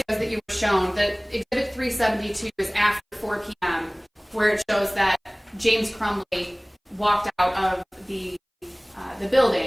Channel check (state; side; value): identical; both; correlation 1.00